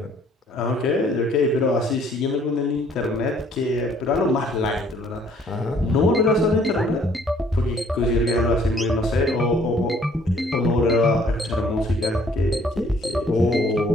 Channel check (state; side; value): normal; both; correlation 0.60